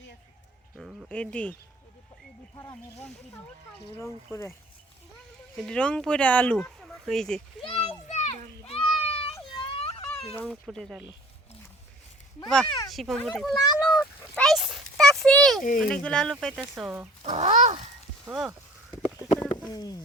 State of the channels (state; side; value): normal; both; correlation 0.48